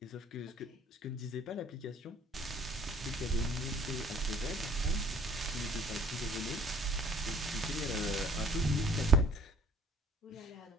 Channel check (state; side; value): normal; both; correlation 0.55